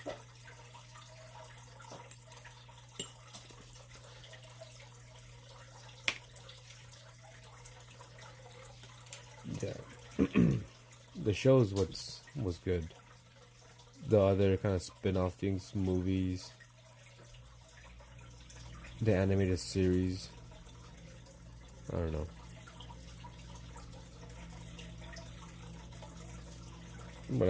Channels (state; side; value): identical; both; correlation 1.00